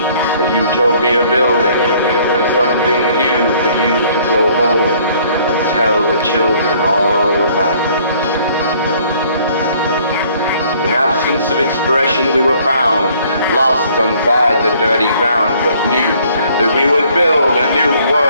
a utopia building, and something new for you to go home and tell the children all about it. In absence of expression we were found, lost inside the dirty ground, but knew that we would build a new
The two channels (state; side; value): inverted; both; correlation -0.59